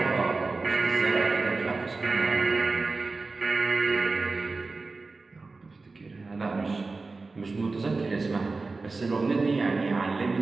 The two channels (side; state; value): left; quieter; 3.7 dB